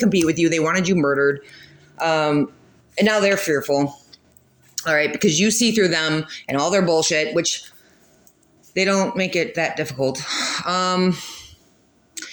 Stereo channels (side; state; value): both; identical; correlation 1.00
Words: with you. They wanted you murdered. And now they're fearful. All right, because you see through them and all their bullshit, which they don't make it that difficult.